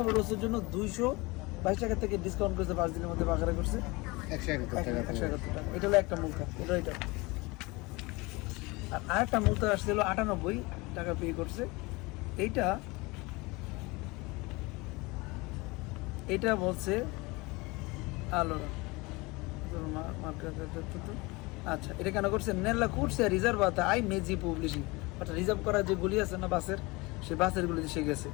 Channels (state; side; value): quieter; right; 24.3 dB